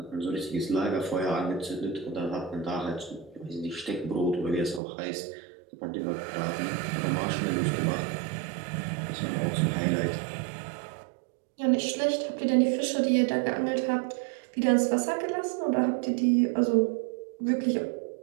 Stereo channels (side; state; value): left; drops out; at 4.8 s